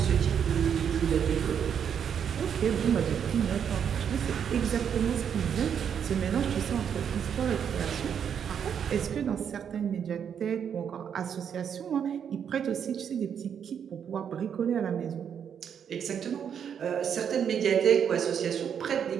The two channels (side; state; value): left; quieter; 8.0 dB